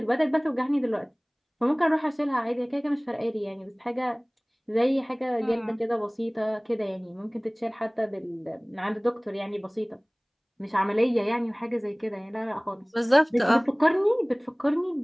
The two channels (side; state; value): both; identical; correlation 1.00